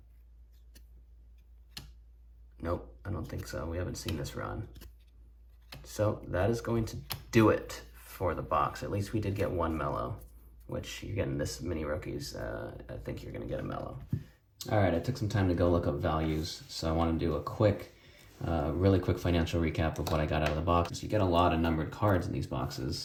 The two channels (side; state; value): both; identical; correlation 1.00